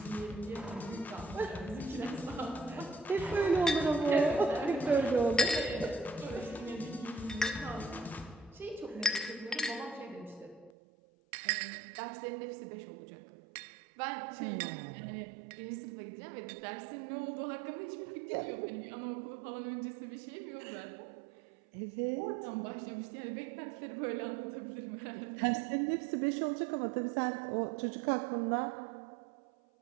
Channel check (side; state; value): left; drops out; at 10.7 s